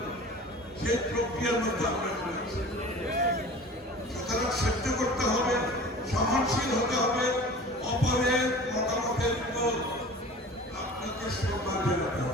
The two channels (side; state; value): both; normal; correlation 0.40